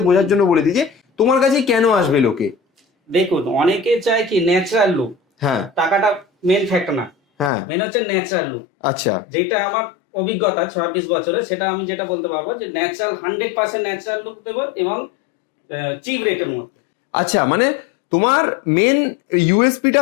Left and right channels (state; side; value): drops out; right; at 7.5 s